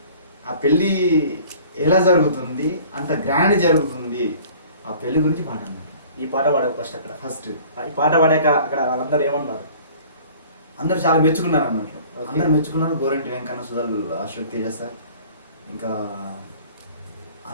ఆ పెళ్ళి ఎలా జరుగుతుంది, అంత గ్రాండ్ జరుగుతుంది, ఆ పెళ్లి గురించి పాట అన్నారు. ఈ పాట పాడావు ఫస్ట్ ఈ పాట పాడాక అక్కడ వాళ్ళందరూ ఏమన్నారు? అందరూ చాలా మెచ్చుకున్నారు అన్నట్లు. అందరు మెచ్చుకున్నారు. గోరంటి వెంకన్న, సుధల్, అశోక్ తేజ సార్, ఇంకా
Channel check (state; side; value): inverted; both; correlation -0.49